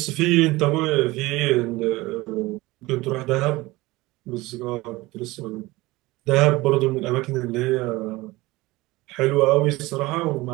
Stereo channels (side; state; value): left; quieter; 20.4 dB